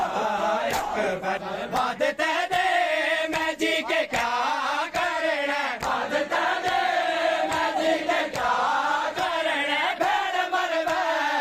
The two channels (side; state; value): both; identical; correlation 1.00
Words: अकबर बाद तेरे मैं जी के क्या करना बाद तेरे मैं जी के क्या करना भेड़ मर